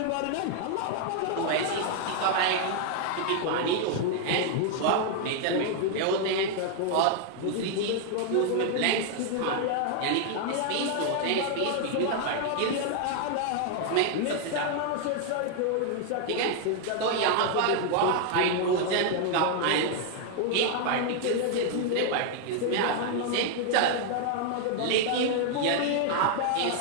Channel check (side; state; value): both; different; correlation 0.00